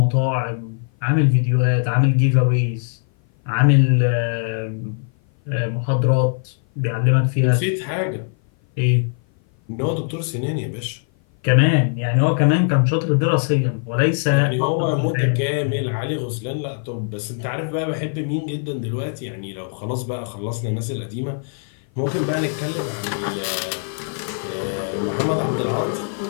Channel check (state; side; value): silent; right; 56 dB below the other